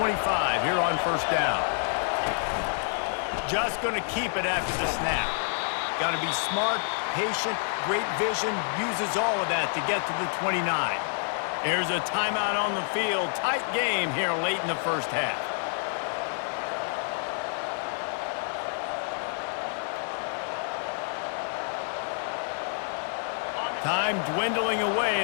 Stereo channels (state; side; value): silent; right; 59 dB below the other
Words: here on first down. Just going to keep it after the snap. Got to be smart, patient, great vision, uses all of that to get to the 29. There's a timeout on the field. Tight game here late in the first half. Time dwindling away